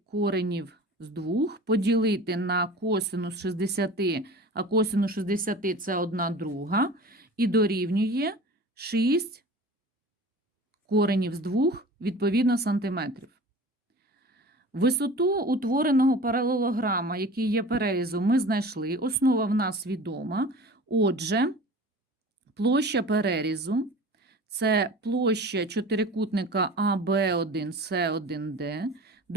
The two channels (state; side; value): normal; both; correlation 0.39